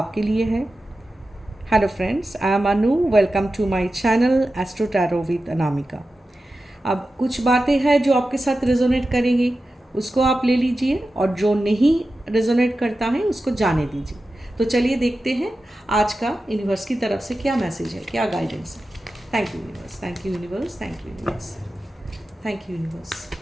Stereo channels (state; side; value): normal; both; correlation 0.93